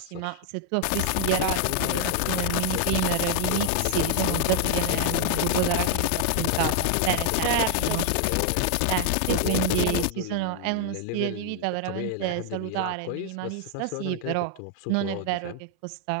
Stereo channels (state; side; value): different; both; correlation 0.00